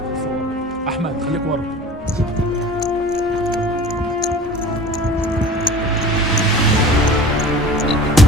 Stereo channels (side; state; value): both; normal; correlation 0.41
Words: احمد خليك ورا.